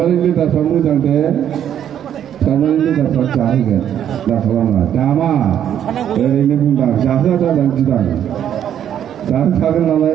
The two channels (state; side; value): quieter; left; 9.9 dB